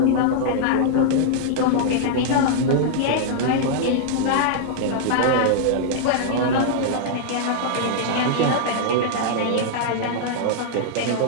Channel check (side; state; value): both; different; correlation -0.01